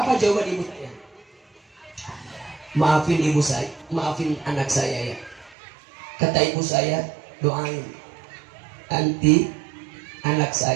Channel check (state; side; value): drops out; left; at 5.6 s